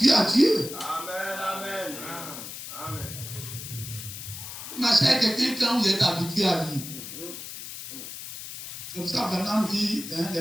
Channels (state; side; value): noise; left; hiss, 10 dB below the sound